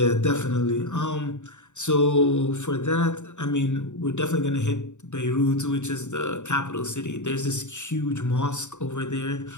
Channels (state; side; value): late; right; 0.84 ms